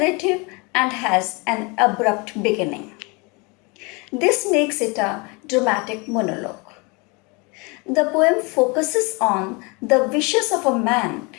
and has an abrupt beginning. This makes it a dramatic monologue. The poem focuses on the wishes of a man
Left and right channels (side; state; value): right; quieter; 29.1 dB